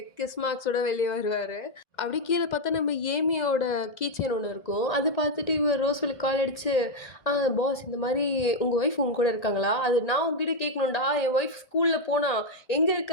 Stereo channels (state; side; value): late; right; 1.8 ms